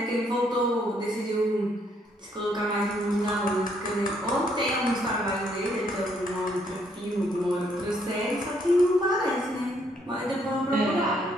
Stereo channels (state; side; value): normal; both; correlation 0.70